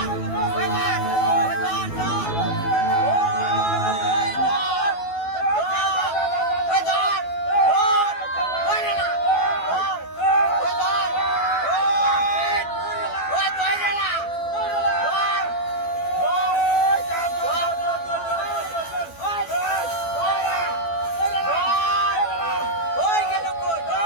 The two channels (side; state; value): right; late; 12 ms